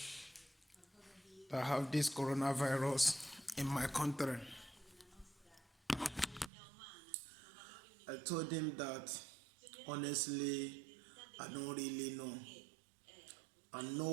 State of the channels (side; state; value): left; drops out; at 6.5 s